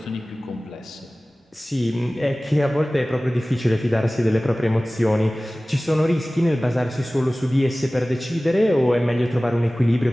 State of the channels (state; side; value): normal; both; correlation 0.98